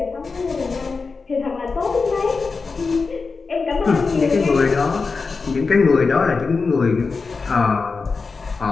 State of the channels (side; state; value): right; quieter; 4.5 dB